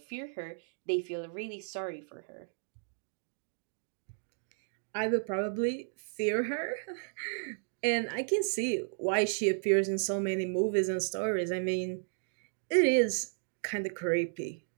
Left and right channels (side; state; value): left; silent; digital silence